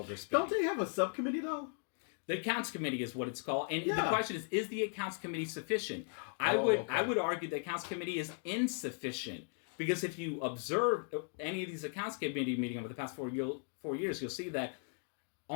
Don't they have a subcommittee, though? The accounts committee is what it's called. And the question is the accounts committee sufficient? I would argue the accounts committee is insufficient. Because if you observe any of these accounts committee meetings over the past 4 years, you'll see that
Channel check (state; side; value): silent; right; 53 dB below the other